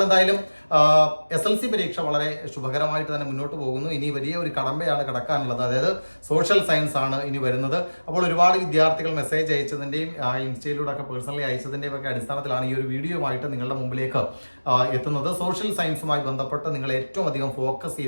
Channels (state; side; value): inverted; both; correlation -1.00